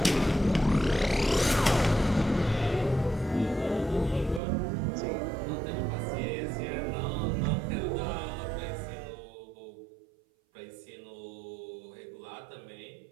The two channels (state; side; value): drops out; left; at 4.4 s